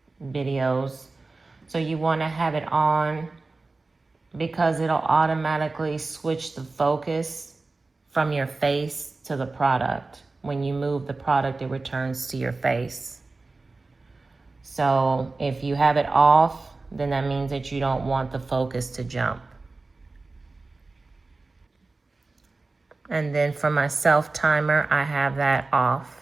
videos. So you want to have it on because it'll automatically switch the focus from your face to the product. When you move the product, it returns to your face. So if you have it off, then that means that you don't want the focus to jump. And then for my self timer, I have that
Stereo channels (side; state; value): left; quieter; 3.5 dB